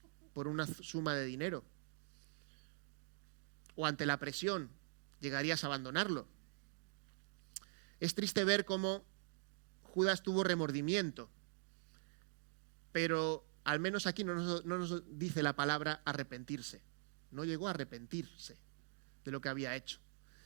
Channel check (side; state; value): left; silent; digital silence